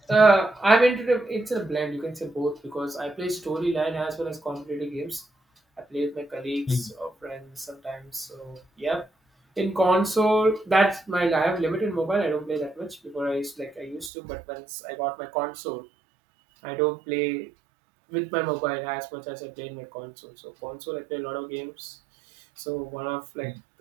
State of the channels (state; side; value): drops out; left; at 14.1 s